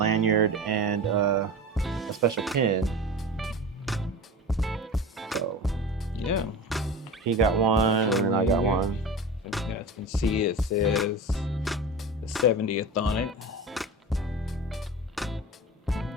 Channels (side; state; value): both; normal; correlation 0.31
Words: and a special pin. So yeah, he got one, and then I got one. So you guys can see it says the 70th on it,